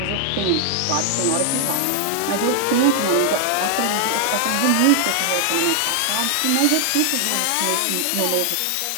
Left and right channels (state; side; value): different; both; correlation 0.00